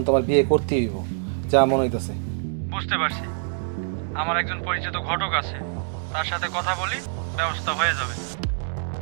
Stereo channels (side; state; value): left; silent; digital silence